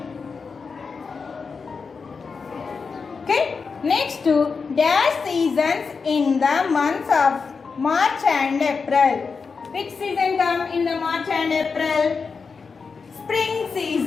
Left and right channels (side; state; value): right; quieter; 5.1 dB